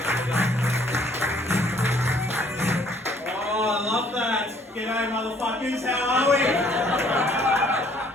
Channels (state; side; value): normal; both; correlation 0.61